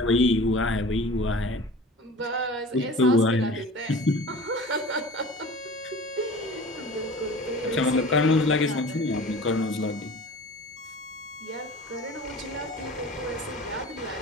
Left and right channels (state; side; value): normal; both; correlation 0.40